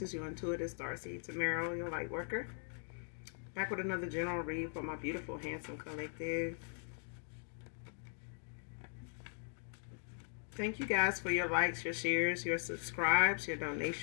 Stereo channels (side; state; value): right; silent; 51 dB below the other